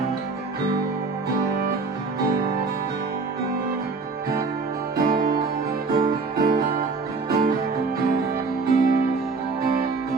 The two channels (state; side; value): quieter; left; 4.2 dB